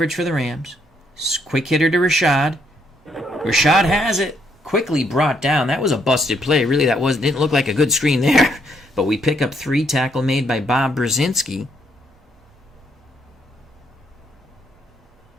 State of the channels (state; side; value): normal; both; correlation 0.73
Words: for the Rams. Quick hitter to Rashad. Rashad has it. Quickly brought down. That was a busted play. Really, didn't look like a good screen there. But we pick up 3. Tackle made by Bob Brzezinski.